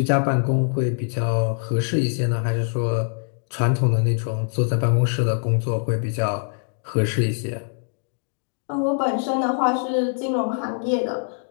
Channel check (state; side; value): silent; right; digital silence